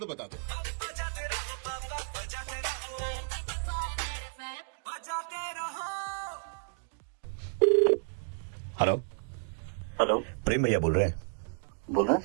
बता दो। हेलो हेलो, प्रेम भैया बोल रहे हैं। बोल रहे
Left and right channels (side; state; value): left; silent; digital silence